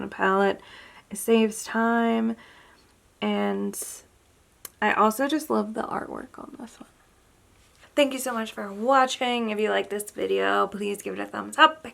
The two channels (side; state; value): both; identical; correlation 1.00